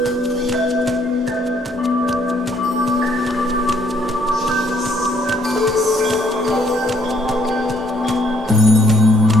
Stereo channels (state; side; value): normal; both; correlation 0.67